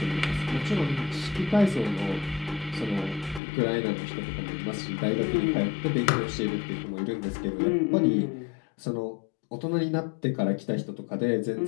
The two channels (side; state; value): right; drops out; at 3.4 s